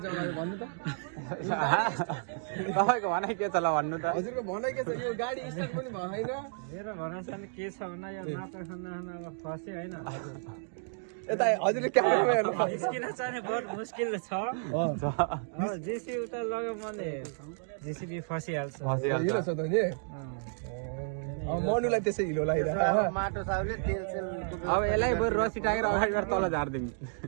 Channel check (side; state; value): left; silent; digital silence